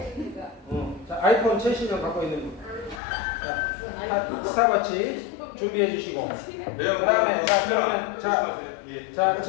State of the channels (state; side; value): drops out; right; at 3.0 s